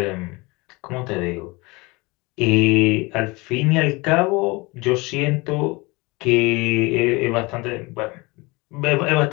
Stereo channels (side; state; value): right; quieter; 24.7 dB